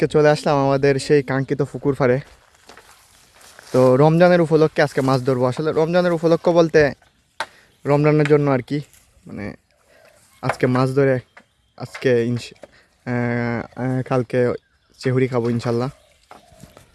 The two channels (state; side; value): identical; both; correlation 1.00